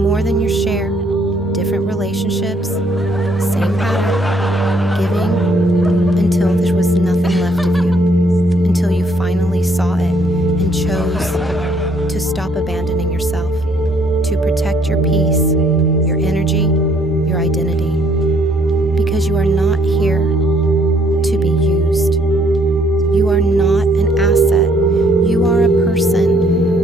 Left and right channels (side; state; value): both; normal; correlation 0.66